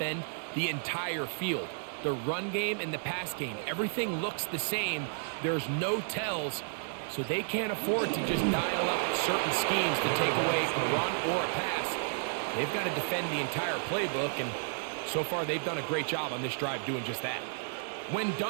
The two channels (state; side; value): silent; left; 56 dB below the other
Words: the entire field. The run game and the pass game, everything looks the same. There's no tells, so they can't afford to just dial up certain schemes to take away a run or a pass. They've got to defend the entire playbook, and so far they've done a great job on this drive doing just that. When